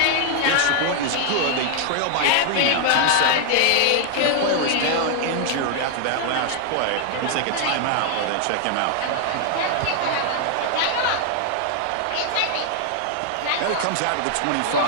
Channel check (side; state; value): both; different; correlation 0.00